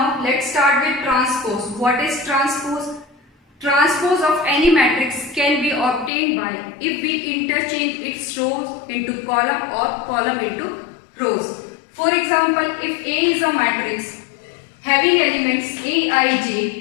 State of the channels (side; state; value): right; drops out; at 6.1 s